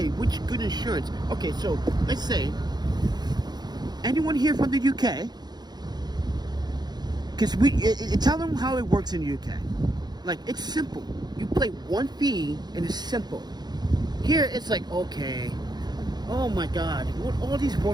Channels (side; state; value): left; late; 0.20 ms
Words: which good insurance. Okay, so let's say anyone here from the UK? Because tell them how it works in the UK. Like, it's simple. You pay one fee and it's simple. Here it's like, okay, oh my god, what all these